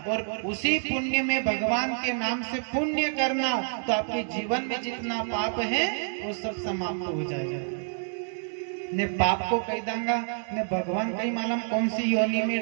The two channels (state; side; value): silent; left; 59 dB below the other